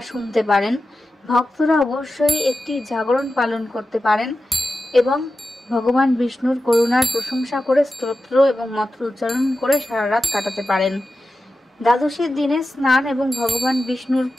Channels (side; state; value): both; normal; correlation 0.93